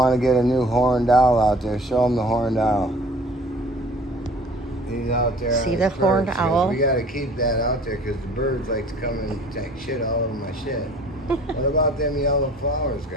to get a new horned owl out there. Show them the horned owl. He's out there. See the horned owl? We got to keep that out there because the birds like to come and take shit all over my shit. What about them yellow flowers,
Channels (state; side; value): normal; both; correlation 0.49